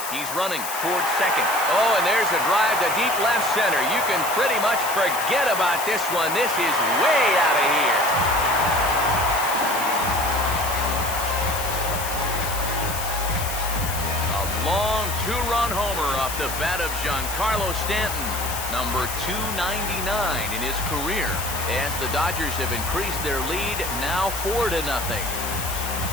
He's running towards second. Oh, and there's a drive to deep left center. You can pretty much forget about this one. This is way out of here. Long 2-run homer off the bat of Giancarlo Stanton, number 299 in his career, as the Dodgers have increased their lead, now 4-0.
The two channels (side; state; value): left; noise; hiss, 7 dB below the sound